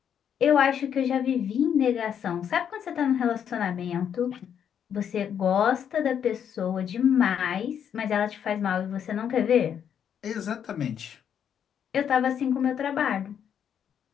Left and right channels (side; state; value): right; quieter; 8.6 dB